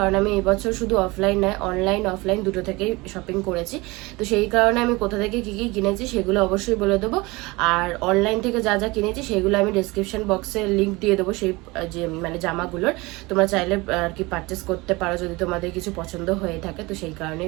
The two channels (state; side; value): quieter; left; 23.3 dB